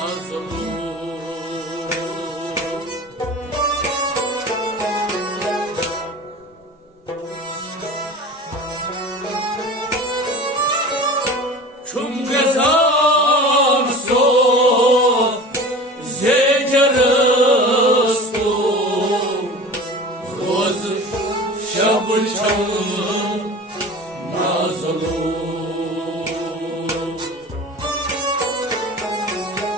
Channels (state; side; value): normal; both; correlation 0.36